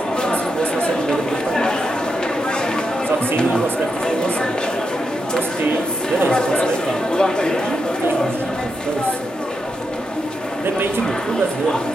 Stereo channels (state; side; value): normal; both; correlation 0.84